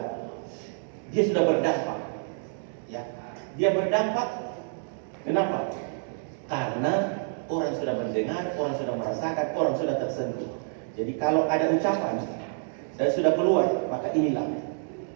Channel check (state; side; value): silent; left; digital silence